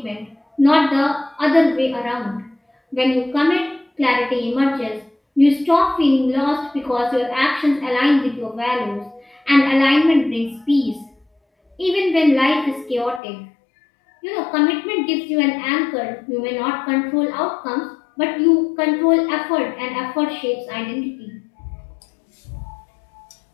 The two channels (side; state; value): right; drops out; at 13.2 s